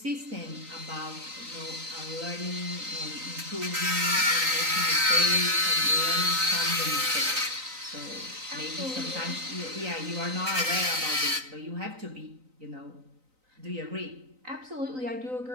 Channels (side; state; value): left; late; 3.9 ms